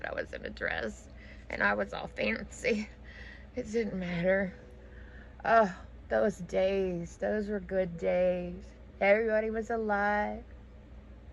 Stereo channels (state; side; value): identical; both; correlation 1.00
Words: I was in a dress, and I was all fancy. It didn't matter. Oh, those days. Those were good days. Everybody was alive.